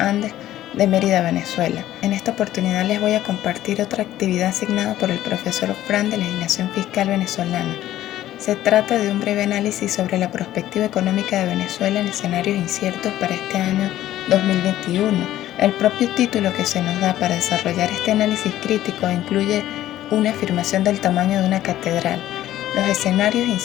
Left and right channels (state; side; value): quieter; right; 13.5 dB